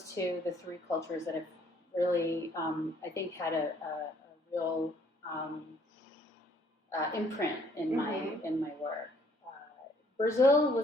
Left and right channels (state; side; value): normal; both; correlation 0.63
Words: to the 3 cultures that have really, I think, had a real imprint in my work. Brazil